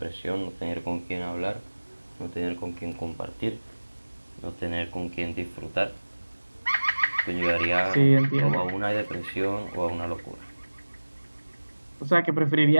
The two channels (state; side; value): inverted; both; correlation -1.00